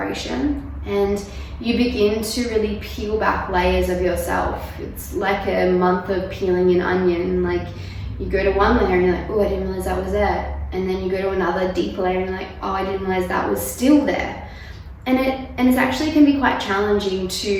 and you begin to really peel back layers of yourself. It's like a month of peeling an onion. Like, you go to one layer and you're like, oh, I didn't realize that was there. And then you go to another deeper layer and you're like, oh, I didn't realize that was still there. And it actually can be quite challenging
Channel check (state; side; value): identical; both; correlation 1.00